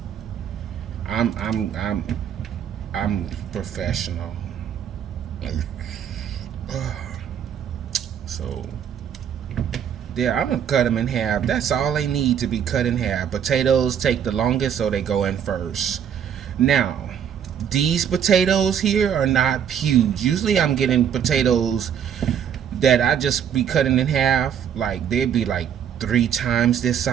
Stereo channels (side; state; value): left; quieter; 8.6 dB